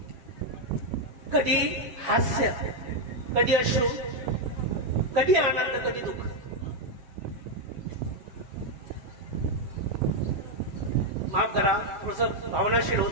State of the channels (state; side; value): late; left; 7.4 ms